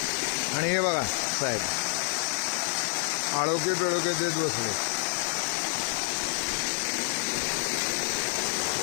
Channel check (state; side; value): silent; right; 59 dB below the other